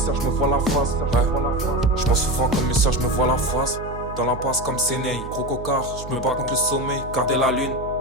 Je m'en souviens comme mes sœurs, je me vois la face. Dans l'impasse comme Séné, gros cocard, je me bats contre le sommeil, garder la lune.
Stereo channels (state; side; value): noise; right; hum, 12 dB below the sound